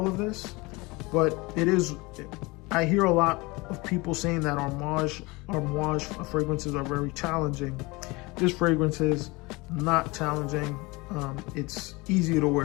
of this, but I hear a lot of people saying that Amouage fragrances are very challenging. This fragrance is not challenging. It's easy to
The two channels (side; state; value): right; quieter; 24.3 dB